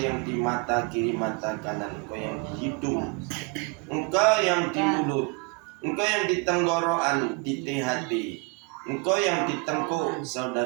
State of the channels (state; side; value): quieter; left; 29.4 dB